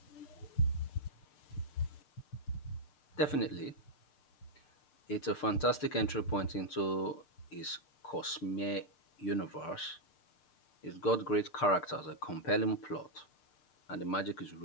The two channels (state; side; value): late; right; 6.6 ms